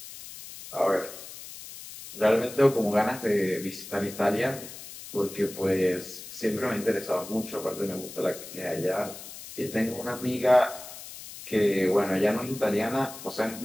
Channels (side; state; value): left; noise; hiss, 13 dB below the sound